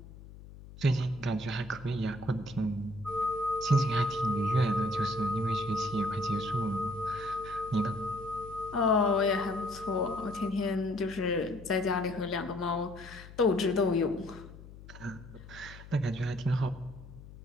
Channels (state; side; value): noise; left; hum, 17 dB below the sound